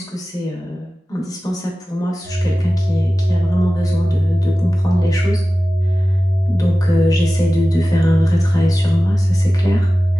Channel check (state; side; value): normal; both; correlation 0.95